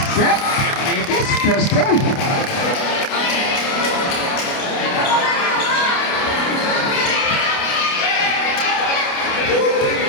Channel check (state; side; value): late; right; 29 ms